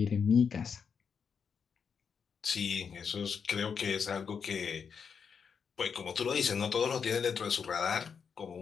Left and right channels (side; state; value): right; quieter; 6.4 dB